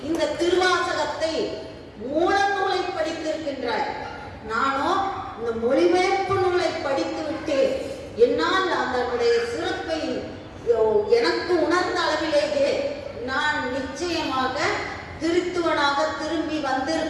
இந்த திருவாசகத்தை மூல நூலை படித்திருக்கின்றாய், நானோ இந்த மொழிபெயர்ப்பு நூலை படித்து விட்டேன். என்னால் அதனுடைய சிறப்பை எனக்கு உணர்ந்த அளவிலேயே நான் நிச்சயமாக திருத்துவனாக திரும்பி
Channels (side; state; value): both; identical; correlation 1.00